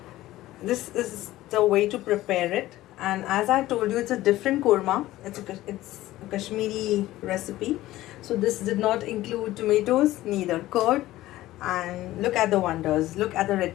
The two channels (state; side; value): quieter; right; 16.0 dB